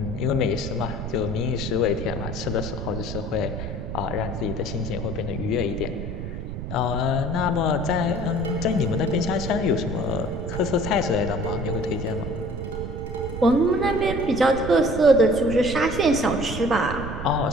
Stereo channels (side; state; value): right; noise; rumble, 6 dB below the sound